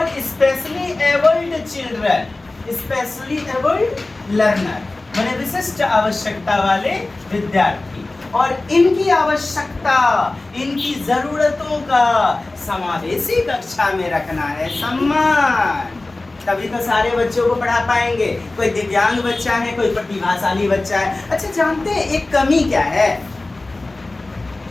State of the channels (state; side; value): quieter; right; 3.0 dB